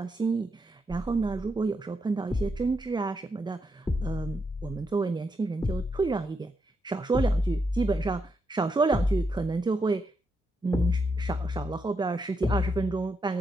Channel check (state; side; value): normal; both; correlation 0.82